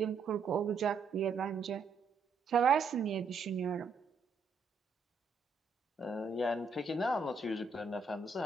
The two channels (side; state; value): left; quieter; 4.5 dB